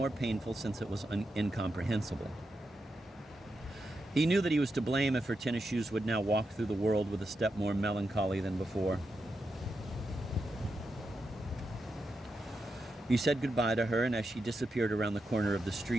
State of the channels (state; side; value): normal; both; correlation 0.86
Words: painful since it was incomprehensible. He knew that he was to blame if her tennis shoes would now walk through the world with a step more melancholy than before. He said goodbye to her, and as she disappeared around the corner of the